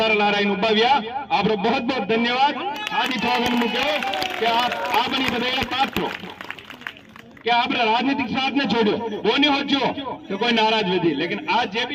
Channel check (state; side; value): identical; both; correlation 1.00